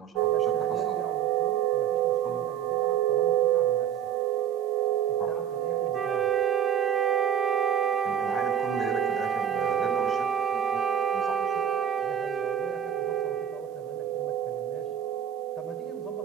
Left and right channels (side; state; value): left; quieter; 9.3 dB